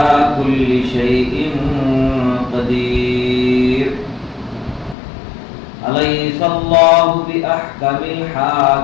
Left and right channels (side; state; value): right; drops out; at 5.0 s